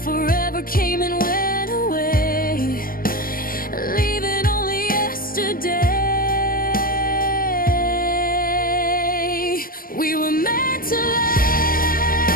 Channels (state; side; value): late; right; 0.42 ms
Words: came and went away, leaving only yesterday. We were meant to